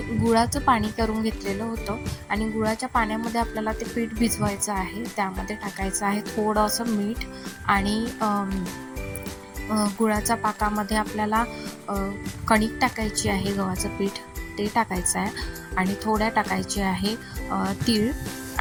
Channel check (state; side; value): identical; both; correlation 1.00